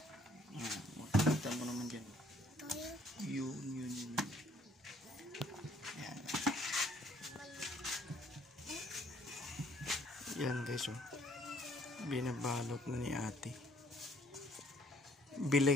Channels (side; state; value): both; normal; correlation 0.62